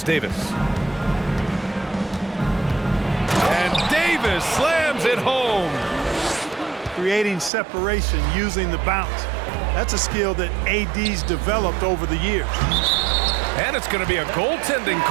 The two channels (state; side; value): drops out; left; at 7.5 s